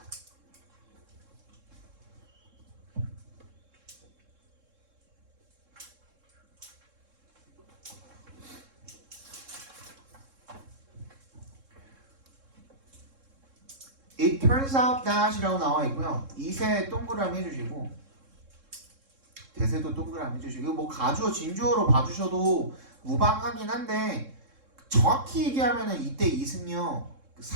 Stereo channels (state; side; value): late; left; 3.7 ms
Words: It turns out that이라고 나와 있고요. 이세 동그라미 해주시고 대세도 동그라미 해주시고 뭐 가주어 진주어로 봐주셔도 무방하긴 한데 정확히 얘기하면은 이때 it은요